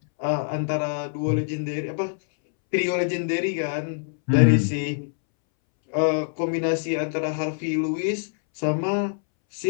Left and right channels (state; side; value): silent; right; 62 dB below the other